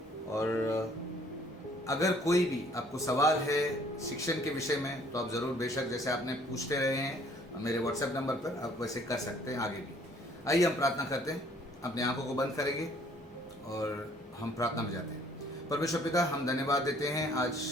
और अगर कोई भी आपको सवाल है शिक्षण के विषय में तो आप ज़रूर, बेशक जैसे आपने पूछते रहे हैं मेरे व्हाट्सएप नंबर पर, आप वैसे कर सकते हैं आगे भी। आइए हम प्रार्थना करते हैं, अपनी आंखों को बंद करेंगे और हम प्रार्थना में जाते हैं। परमेश्वर पिता, हम धन्यवाद देते हैं आज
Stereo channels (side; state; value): both; normal; correlation 0.59